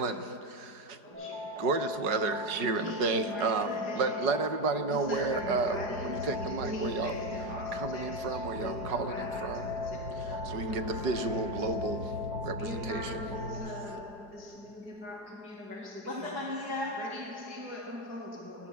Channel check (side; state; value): left; late; 4.9 ms